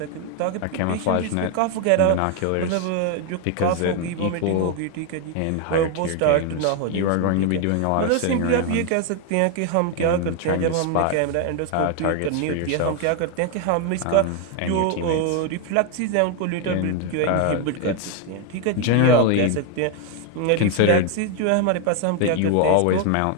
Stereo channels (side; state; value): both; different; correlation 0.01